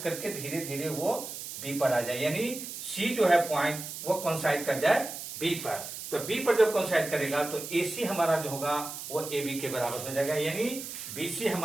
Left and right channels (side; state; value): right; noise; hiss, 9 dB below the sound